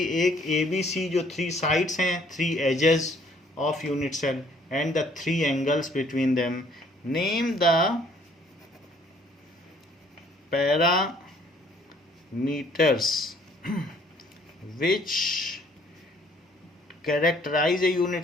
एक ABC जो 3 साइड्स हैं, 3 edges of unit cell and the 3 angles between them. Name the parameters which characterize a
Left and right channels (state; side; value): normal; both; correlation 0.61